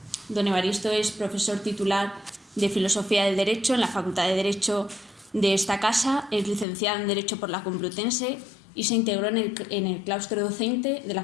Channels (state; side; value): drops out; right; at 6.7 s